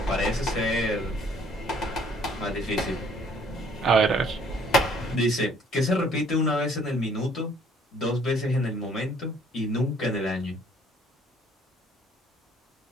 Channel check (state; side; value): normal; both; correlation 0.60